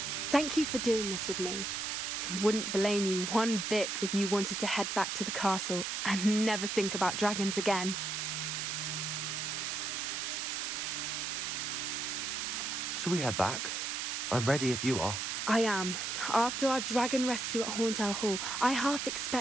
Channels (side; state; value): right; noise; hiss, 2 dB below the sound